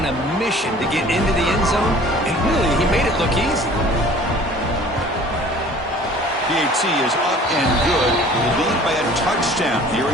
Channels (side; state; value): both; normal; correlation 0.49